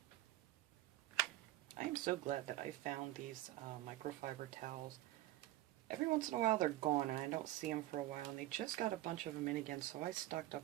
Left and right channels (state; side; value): quieter; left; 16.1 dB